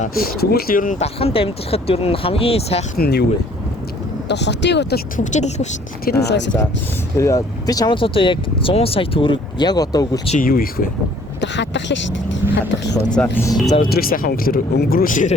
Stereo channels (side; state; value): both; normal; correlation 0.57